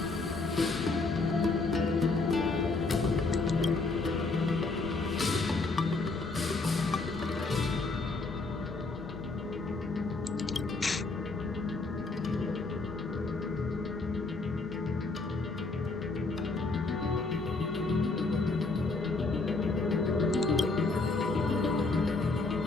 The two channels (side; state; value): right; quieter; 3.6 dB